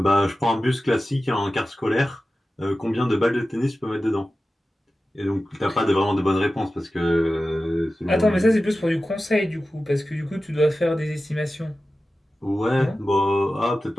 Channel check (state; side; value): normal; both; correlation 0.94